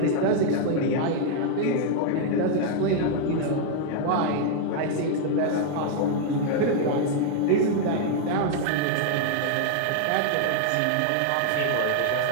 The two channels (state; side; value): different; both; correlation 0.00